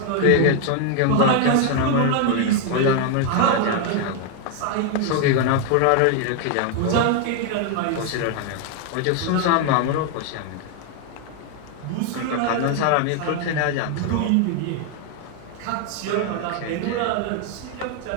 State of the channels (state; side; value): different; both; correlation 0.01